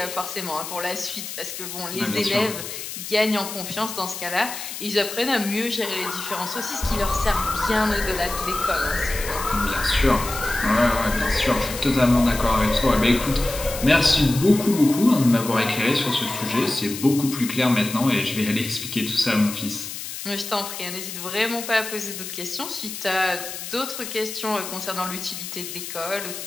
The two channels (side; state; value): left; noise; hiss, 8 dB below the sound